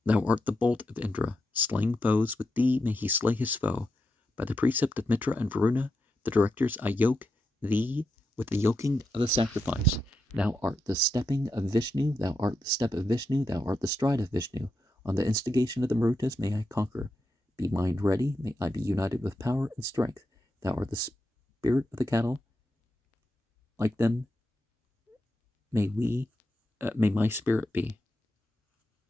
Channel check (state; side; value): normal; both; correlation 0.86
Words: Thou art the bolt of Indra, slaying foes. With thee may he slay his foe. By the precept of Mitra and Varuna, the directors, I yoke thee with the yoking of the sacrifice. Thou art the stepping of Vishnu, thou art the step of Vishnu, thou art the stride of Vishnu. On the instigation of the Marutas may I conquer. Be mind ready, may I be united with power and strength. Thou art the spirit of the cattle. Like them, may my spirit be.